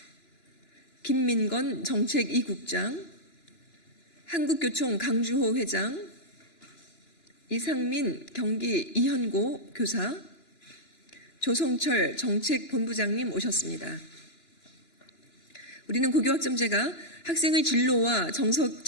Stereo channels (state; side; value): late; right; 2.9 ms